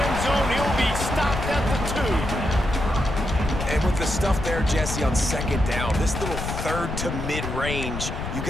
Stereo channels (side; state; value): left; noise; rumble, 5 dB below the sound